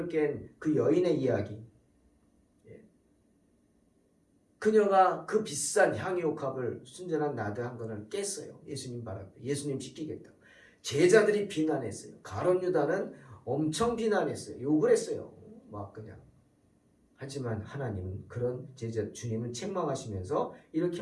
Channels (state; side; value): identical; both; correlation 1.00